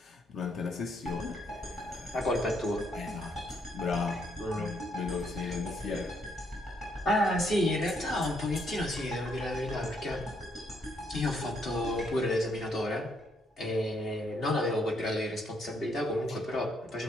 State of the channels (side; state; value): both; normal; correlation 0.73